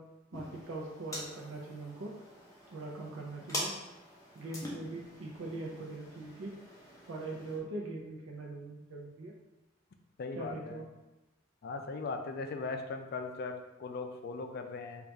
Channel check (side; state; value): both; normal; correlation 0.24